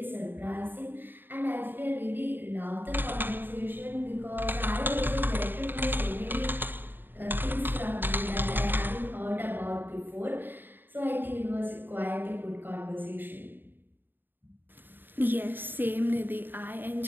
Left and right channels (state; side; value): late; left; 0.094 ms